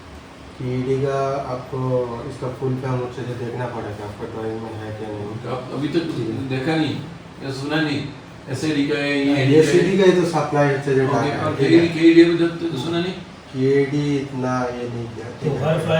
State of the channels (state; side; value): identical; both; correlation 1.00